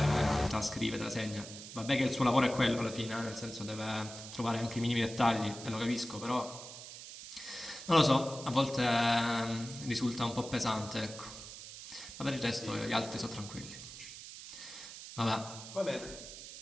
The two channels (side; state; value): right; noise; hiss, 12 dB below the sound